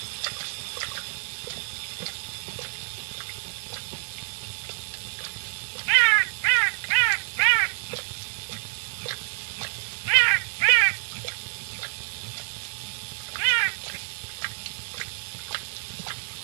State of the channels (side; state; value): left; silent; digital silence